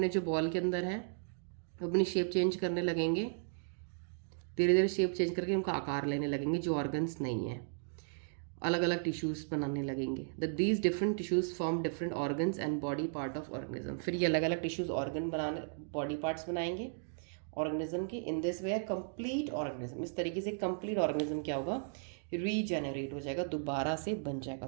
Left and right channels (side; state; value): left; silent; digital silence